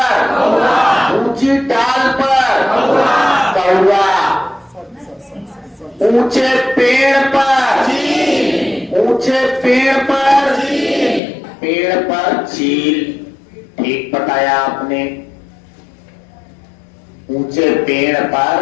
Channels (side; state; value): right; drops out; at 11.2 s